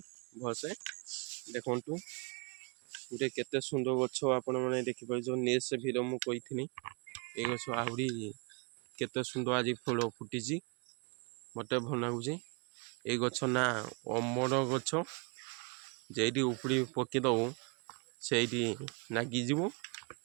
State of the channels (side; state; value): left; quieter; 32.5 dB